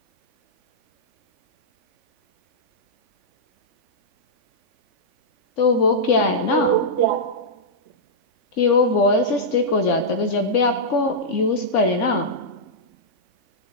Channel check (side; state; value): right; late; 3.5 ms